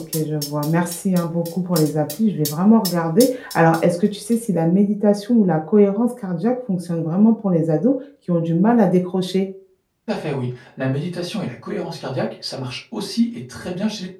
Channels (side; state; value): both; identical; correlation 1.00